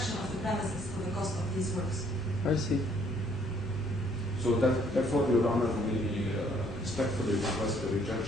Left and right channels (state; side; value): normal; both; correlation 0.65